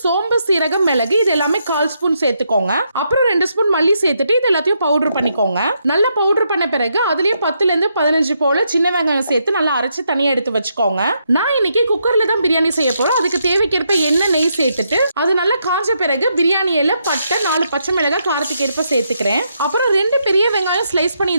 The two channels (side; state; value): both; inverted; correlation -0.79